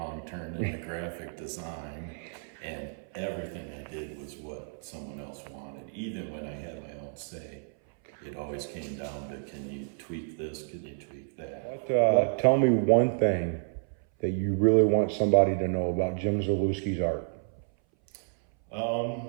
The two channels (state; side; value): silent; left; 58 dB below the other